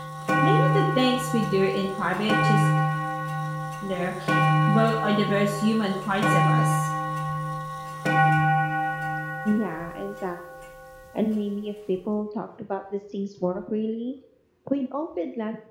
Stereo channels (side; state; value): both; identical; correlation 1.00